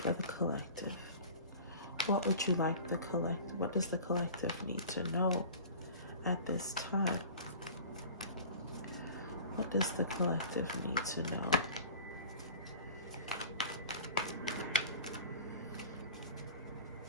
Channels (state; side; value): inverted; both; correlation -0.40